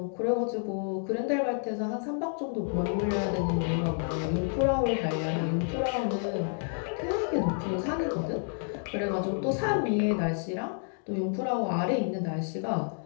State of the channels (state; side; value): silent; right; 58 dB below the other